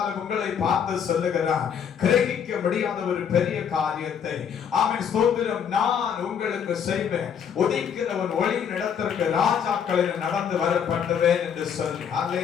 உங்களை பார்த்து சொல்லுகிறார், கிரகிக்க முடியாத ஒரு பெரிய காரியத்தை ஆமென் ஸ்தோத்திரம் நான் உங்களுக்கு செய்வேன். உதிக்கிறவன் ஒளியின் இடத்திற்கு ராஜாக்களில் நடந்து வரப்பட்டவேன் என்று சொல்லி.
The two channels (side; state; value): right; quieter; 7.7 dB